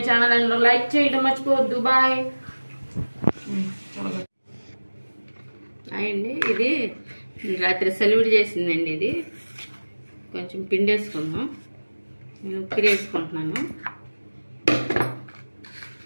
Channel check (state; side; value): inverted; both; correlation -1.00